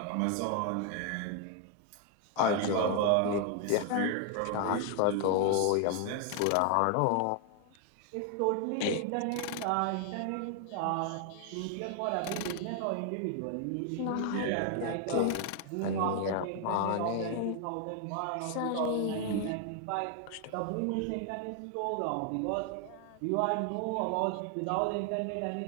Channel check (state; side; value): different; both; correlation 0.00